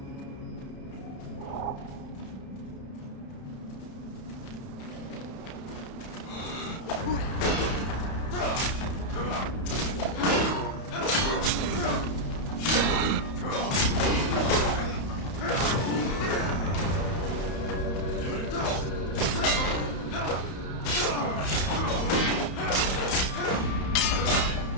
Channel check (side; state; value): right; late; 31 ms